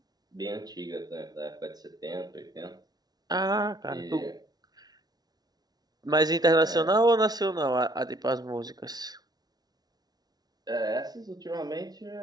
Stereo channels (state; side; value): late; left; 0.19 ms